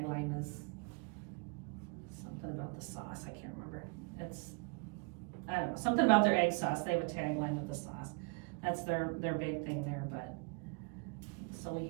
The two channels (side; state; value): left; quieter; 33.2 dB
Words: is about the sauce, I can't remember. I don't know, something about their egg sauce. They have a tagline with the sauce. That's their big thing there. But so